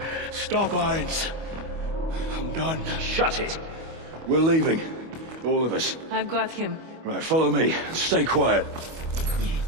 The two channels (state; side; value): late; left; 25 ms